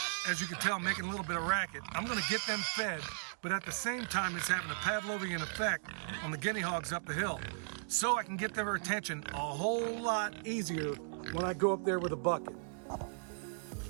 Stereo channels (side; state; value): left; silent; digital silence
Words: as you can tell, making a little bit of racket. I'm gonna get them fed, but at the same time, it's having a Pavlovian effect on the guinea hogs up the hill. So I can get their attention a whole lot easier when I go up there with a bucket.